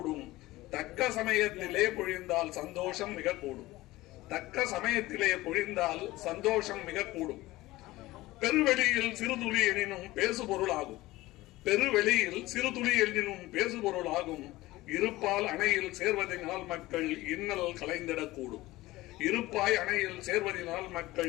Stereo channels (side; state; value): right; quieter; 18.4 dB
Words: தக்க சமயத்திலே பொழிந்தால் சந்தோஷம் மிக கூடும். தக்க சமயத்திலே பொழிந்தால் சந்தோஷம் மிக கூடும். பெருவெளியில் சிறுதுளி எனினும் பேசுபொருளாகும். பெருவெளியில் சிறுதுளி எனினும் பேசுபொருளாகும். இருப்பால் அணையில் சேர்வதனால் மக்கள் இன்னல் கலைந்திடக்கூடும். இருப்பாய் அணையில் சேர்வதனால்